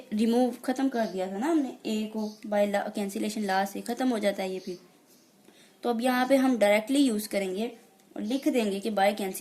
रिमूव खत्म कर दिया था ना हमने, ए को बाय कैंसिलेशन लॉ से खत्म हो जाता है ये फिर। तो अब यहाँ पे हम डायरेक्टली यूज करेंगे और लिख देंगे कि बाय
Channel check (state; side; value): identical; both; correlation 1.00